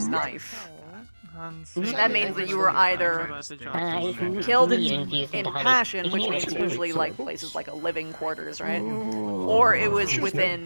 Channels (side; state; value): both; inverted; correlation -1.00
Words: that means that you were either killed in passion, which means usually like places like a living quarters, right? Or it was